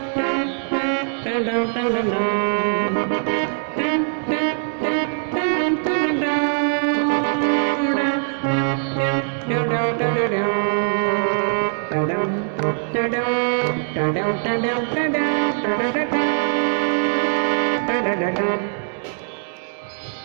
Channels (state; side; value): silent; left; digital silence